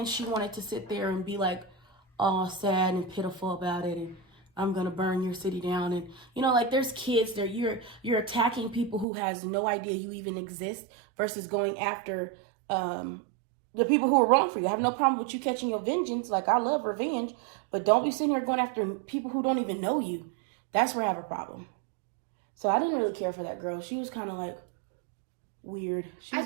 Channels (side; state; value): left; drops out; at 9.1 s